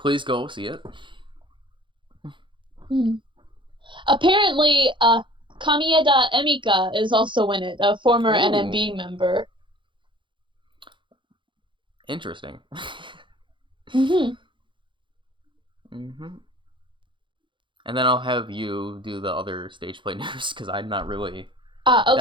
go see it. Apparently, Kamieda Emika is also in it, a former NMB member. Interesting. And then I'll have you do the other stage play news, because I'm not really...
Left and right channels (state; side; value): late; left; 0.24 ms